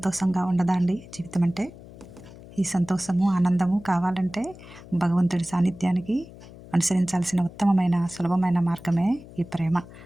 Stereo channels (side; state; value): left; noise; hum, 18 dB below the sound